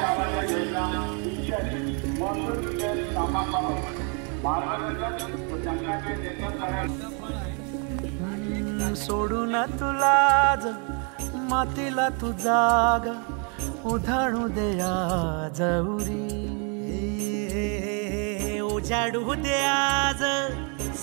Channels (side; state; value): left; quieter; 37.3 dB